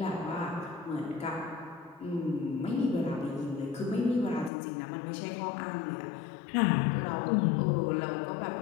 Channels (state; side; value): drops out; right; at 4.5 s